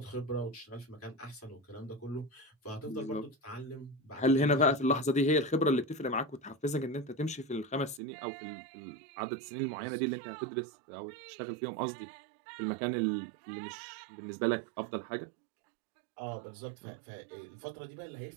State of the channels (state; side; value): drops out; left; at 8.0 s